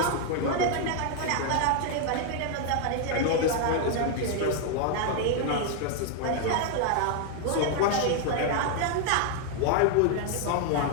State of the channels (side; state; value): both; different; correlation 0.00